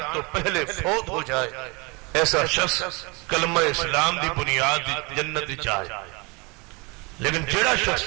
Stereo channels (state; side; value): quieter; left; 28.4 dB